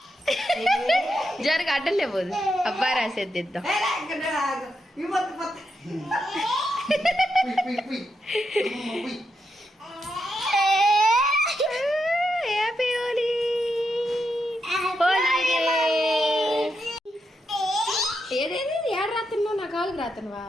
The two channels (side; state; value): both; normal; correlation 0.83